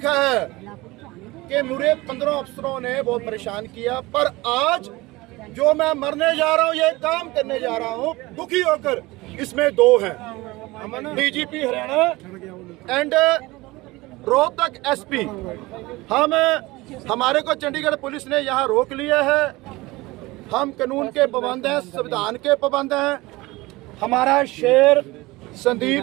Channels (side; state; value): left; quieter; 21.0 dB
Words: है कि मुझे 15 अफसरों ने बहुत परेशान किया, पर आज जो मैं मरने जा रहा हूँ, ये काम करने जा रहा हूँ दुखी होकर। इसमें 2 हैं, DGP Haryana and Rohtak SP. हमारे को चंडीगढ़ पुलिस ने यहाँ रोक लिया है। हम कानून के पाबंद हैं, संविधान के पाबंद हैं। हमारा शेर